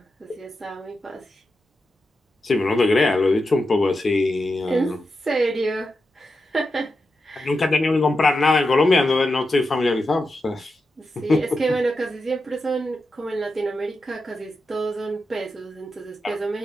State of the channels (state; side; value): normal; both; correlation 0.89